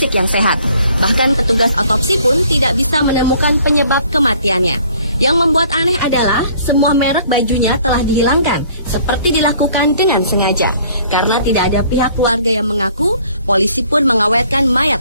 yang sehat. Bahkan petugas otopsi pun tidak bisa menemukan penyebab kematiannya. Yang membuat aneh adalah semua merek bajunya telah dihilangkan, seperti dilakukan dengan sengaja. Karena tidak ada pihak keluarga yang mengaku, polisi pun mengawetkan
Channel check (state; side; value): inverted; both; correlation -0.58